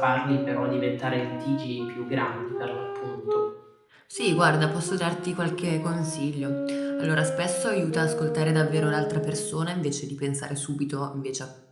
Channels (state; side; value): identical; both; correlation 1.00